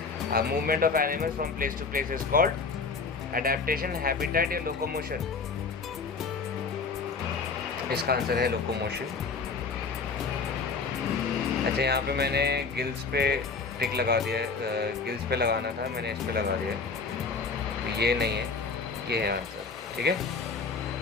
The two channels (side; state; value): right; quieter; 4.7 dB